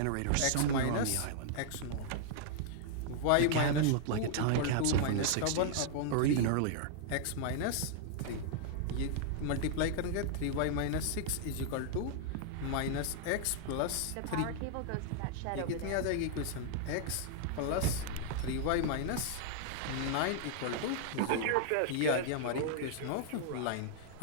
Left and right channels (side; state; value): both; different; correlation -0.01